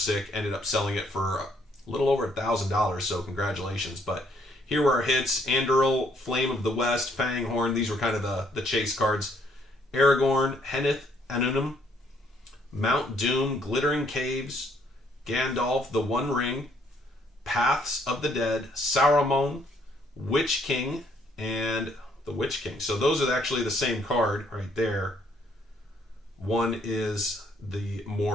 Ended up selling it for a little over $1,000, so congratulations. But here were our hits. Anduril, Flame of the West, Fanghorn. These were kind of the chase cards. Aragorn, Henneth Anunum, Mount Doom, Glittering Caves, Gandalf, The One Ring, Paths of the Dead, Saruman, Witch King, and the Witch King. So those are actually the same card right there. One is the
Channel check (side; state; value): both; normal; correlation 0.68